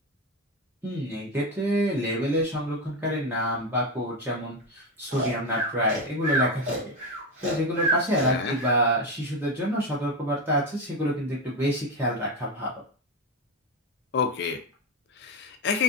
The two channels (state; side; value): normal; both; correlation 0.14